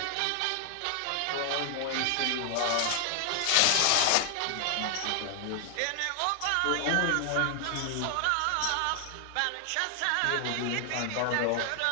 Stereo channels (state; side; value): different; both; correlation 0.00